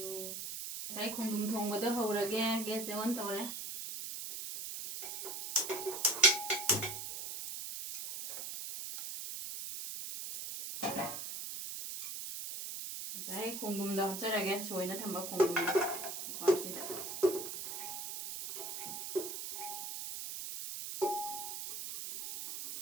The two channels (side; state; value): right; noise; hiss, 6 dB below the sound